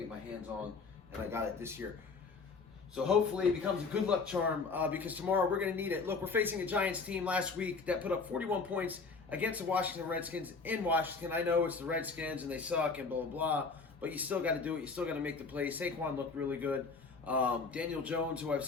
get my hands on, and I got it this year. So hopefully it becomes a good luck charm because tomorrow we're going to need it. Look, we're facing a Giants team last week that put up 41 points against the Washington Redskins in Washington. I know it's the Redskins and they suck and blah, blah, blah, but you still got to do it. You still got to make the plays. Saquon looked really good. Daniel Jones, who I've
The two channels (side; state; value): right; quieter; 4.5 dB